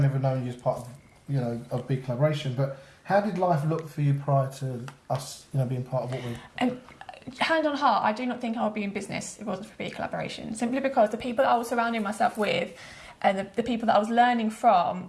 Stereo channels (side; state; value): both; identical; correlation 1.00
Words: ever known you as part of, of BeCollaboration, but how did life look for you prior to us, being part of what we? Hand on heart, I do not think I would be in business if it wasn't for BeCollaboration. Simply because the people that I was surrounding myself with, and the people that I was learning